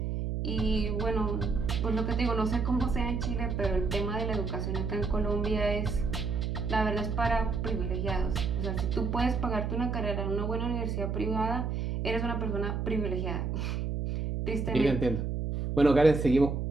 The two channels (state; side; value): noise; right; hum, 1 dB below the sound